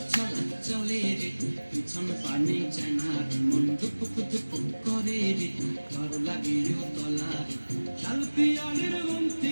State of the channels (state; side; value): inverted; both; correlation -1.00